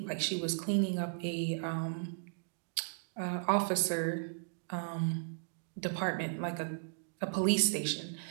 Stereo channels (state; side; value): silent; left; digital silence